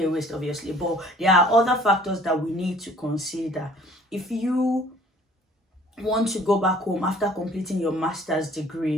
a waste, obviously. But there are other factors that we need to consider. If you want to go back home after completing your master's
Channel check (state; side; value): normal; both; correlation 0.54